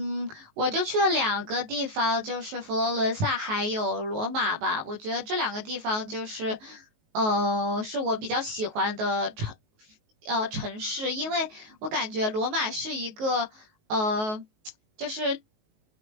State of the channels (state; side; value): late; left; 19 ms